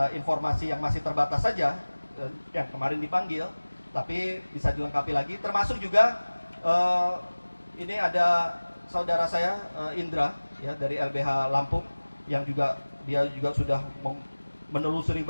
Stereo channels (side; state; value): both; inverted; correlation -1.00